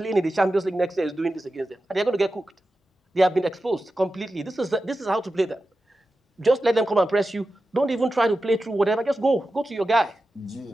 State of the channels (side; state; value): both; normal; correlation 0.92